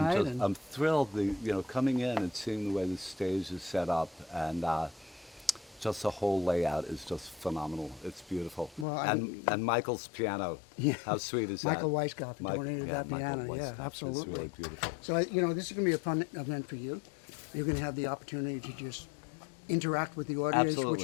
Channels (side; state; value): right; drops out; at 8.8 s